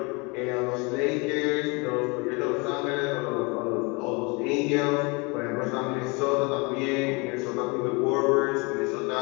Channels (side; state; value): right; quieter; 29.0 dB